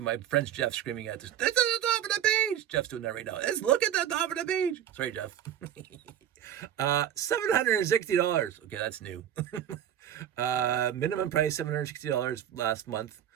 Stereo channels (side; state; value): left; quieter; 10.4 dB